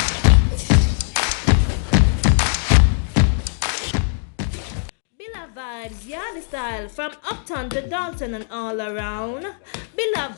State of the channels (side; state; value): right; silent; digital silence